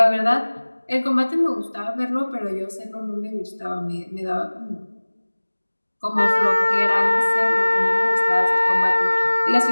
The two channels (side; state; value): both; inverted; correlation -1.00